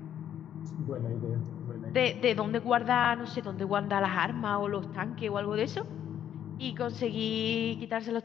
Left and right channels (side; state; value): right; quieter; 10.0 dB